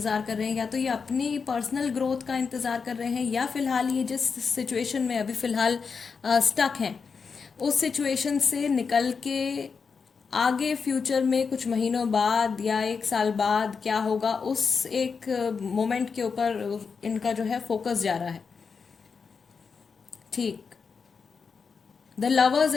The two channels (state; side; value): quieter; right; 5.5 dB